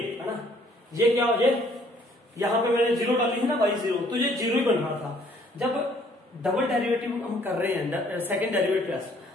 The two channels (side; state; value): both; normal; correlation 0.61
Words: है ना, ये क्या हो जाए, यहाँ पे मैंने 0 डाली है ना y 0, तो ये 0 ही बन रहा था। जब डबल डेरिवेटिव हम कर रहे हैं, सेकंड डेरिवेटिव,